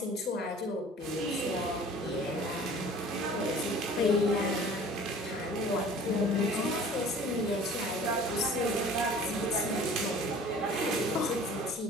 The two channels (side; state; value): both; normal; correlation 0.47